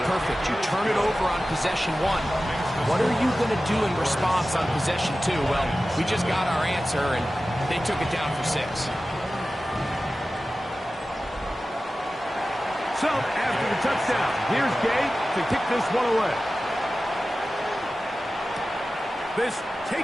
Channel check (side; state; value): both; normal; correlation 0.95